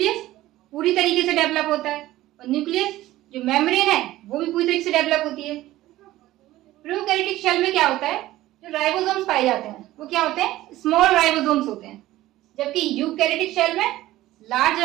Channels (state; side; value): quieter; left; 15.9 dB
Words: पूरी तरीके से डेवलप होता है और न्यूक्लियस जो मेम्ब्रेन है वो भी पूरी तरीके से डेवलप होती है। प्रोकैरियोटिक शेल में क्या होता है, जो राइबोसोम्स पाए जाते हैं वो क्या होते हैं, स्मॉल राइबोसोम्स होते हैं, जबकि यूकैरियोटिक शेल में लार्ज